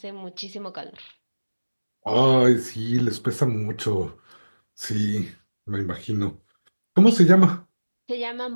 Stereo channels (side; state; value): both; inverted; correlation -1.00